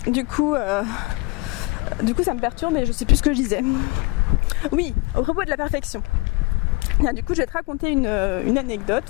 Du coup ça me perturbe et je sais plus ce que je disais. Oui, au propos de la perfection. Du coup je vais te raconter une anecdote.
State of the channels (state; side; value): quieter; right; 24.6 dB